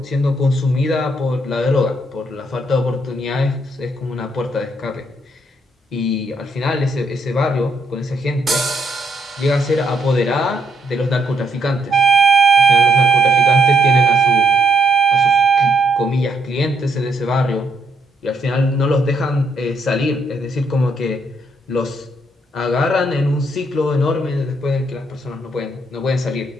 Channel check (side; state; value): both; normal; correlation 0.73